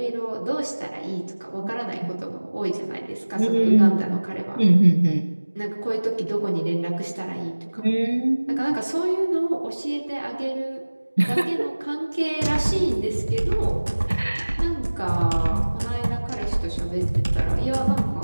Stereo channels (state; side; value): inverted; both; correlation -1.00